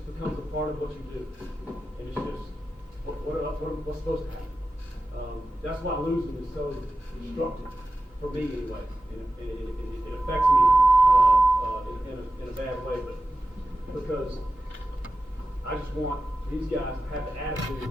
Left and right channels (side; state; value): both; normal; correlation 0.93